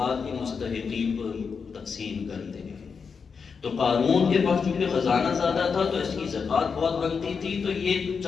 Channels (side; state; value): right; quieter; 5.7 dB